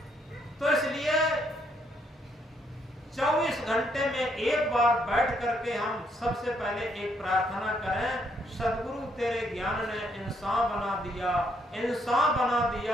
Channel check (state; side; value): normal; both; correlation 0.73